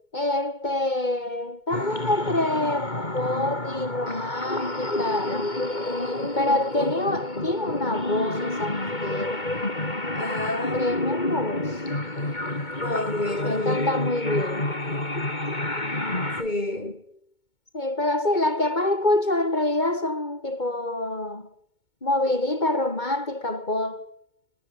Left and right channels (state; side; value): late; right; 2.2 ms